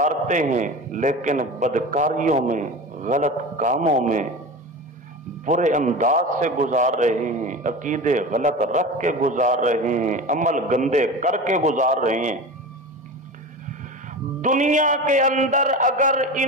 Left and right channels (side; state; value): both; normal; correlation 0.30